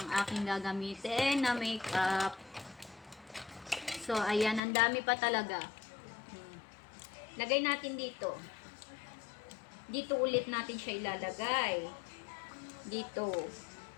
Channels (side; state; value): right; drops out; at 4.6 s